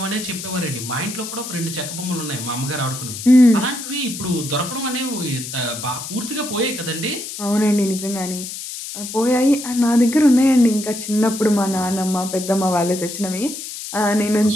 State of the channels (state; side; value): noise; left; hiss, 9 dB below the sound